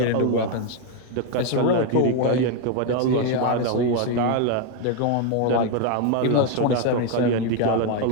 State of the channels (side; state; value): both; different; correlation 0.01